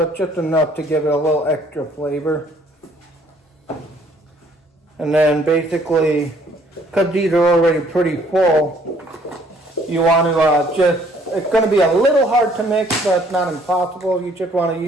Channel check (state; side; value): normal; both; correlation 0.62